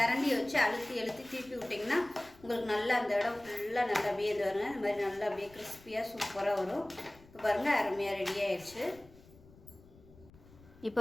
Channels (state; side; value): noise; left; rumble, 24 dB below the sound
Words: வச்சு அழுத்தி திருப்பி விட்டிங்கன்னா உங்களுக்கு நல்லா அந்த இடம் ஃபுல்லாக நல்லா அப்படியே இது வருங்க. இந்த மாதிரி நல்லா அப்படியே கிறிஸ்பியாக சூப்பராக வரும். இப்போ பாருங்கள், அருமையாக ரெடி ஆயிடுச்சு. இப்போ